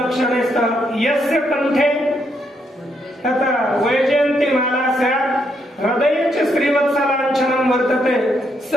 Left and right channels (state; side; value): normal; both; correlation 0.76